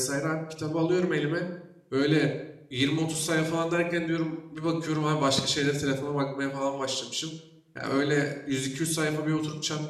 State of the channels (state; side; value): identical; both; correlation 1.00